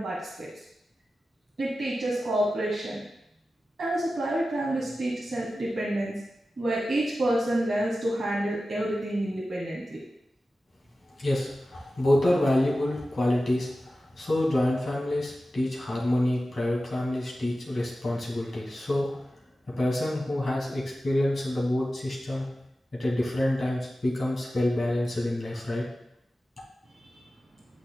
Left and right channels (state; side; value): normal; both; correlation 0.94